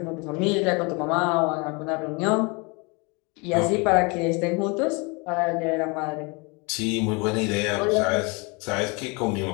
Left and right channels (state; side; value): quieter; right; 29.5 dB